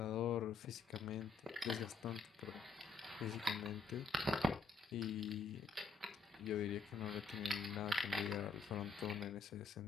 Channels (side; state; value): right; quieter; 4.2 dB